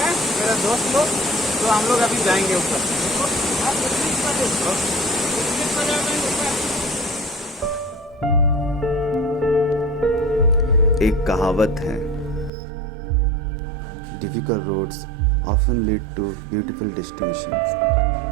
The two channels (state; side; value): drops out; left; at 12.5 s